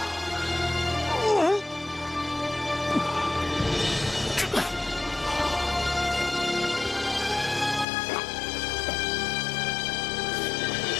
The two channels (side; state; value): right; drops out; at 7.9 s